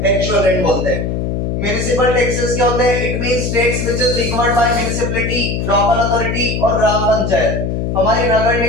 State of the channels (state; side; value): noise; left; hum, 1 dB below the sound